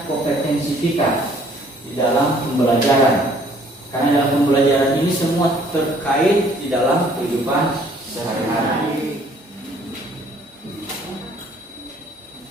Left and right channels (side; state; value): both; normal; correlation 0.59